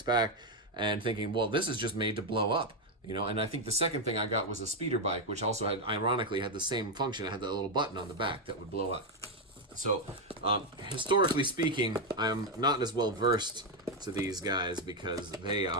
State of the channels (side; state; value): both; normal; correlation 0.04